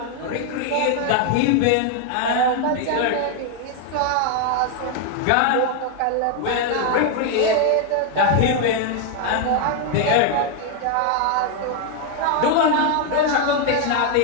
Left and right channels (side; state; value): both; different; correlation 0.00